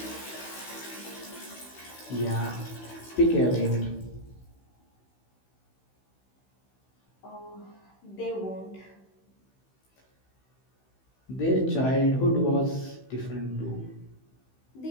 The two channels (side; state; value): right; late; 16 ms